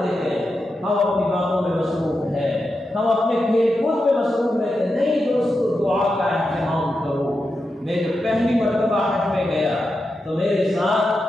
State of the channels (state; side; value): normal; both; correlation 0.88